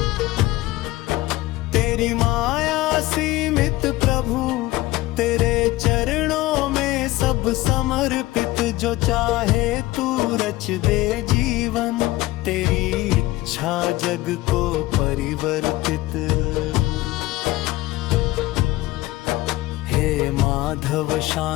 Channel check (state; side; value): quieter; right; 18.1 dB